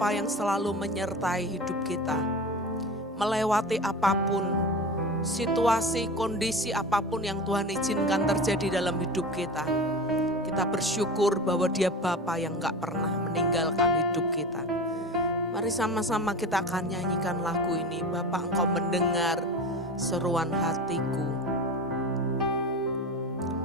yang selalu menyertai hidup kita. Melewati apapun, situasi, kondisi apapun yang Tuhan izinkan terjadi dalam hidup kita. Kita bersyukur bahwa Dia Bapa yang gak pernah meninggalkan hidup kita. Mari sama-sama kita akan nyanyikan lagu ini. Bapa, Engkau mendengar seruan hatiku.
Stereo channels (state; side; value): normal; both; correlation 0.30